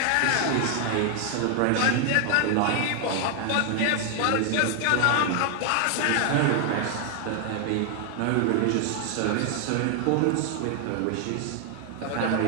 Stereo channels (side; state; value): both; different; correlation 0.00